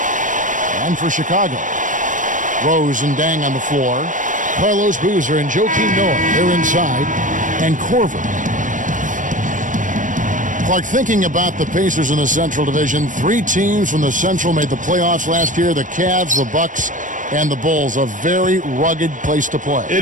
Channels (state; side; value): late; left; 0.37 ms